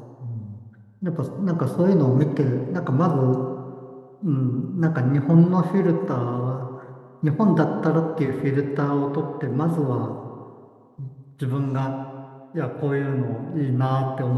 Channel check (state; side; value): identical; both; correlation 1.00